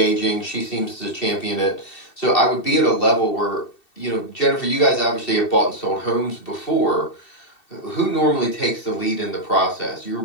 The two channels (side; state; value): right; late; 2.7 ms